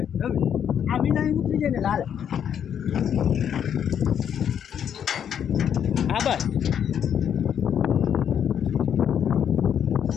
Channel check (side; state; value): right; quieter; 8.7 dB